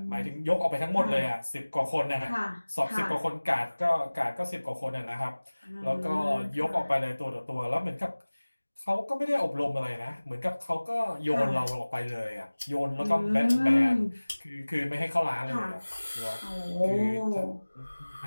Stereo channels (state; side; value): inverted; both; correlation -1.00